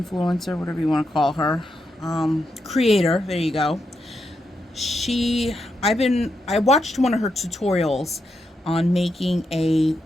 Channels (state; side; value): normal; both; correlation 0.84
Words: whatever you want to call her, creator, there you go. I watched one of her tutorials on making a